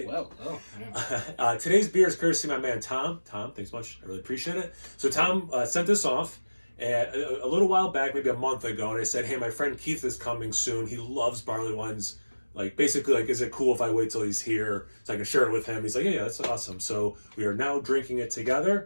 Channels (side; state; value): both; inverted; correlation -1.00